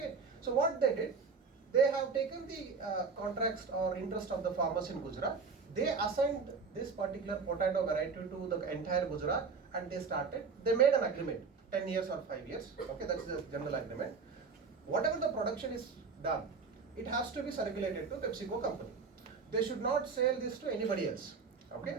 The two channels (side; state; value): left; quieter; 5.0 dB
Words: so what they did, they have taken the contracts or interest of the farmers in Gujarat. They assigned this particular potato variety to the entire Gujarat, and they made an agreement, 10 years or 5 years. Okay, that's the general agreement. Whatever the production is done, it has to be circulated to PepsiCo company. They should not sell this to anybody else. Okay,